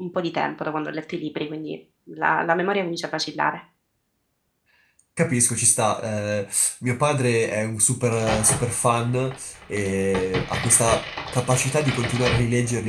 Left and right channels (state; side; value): identical; both; correlation 1.00